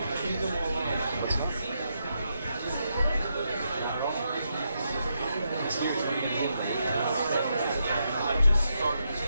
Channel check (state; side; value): inverted; both; correlation -0.82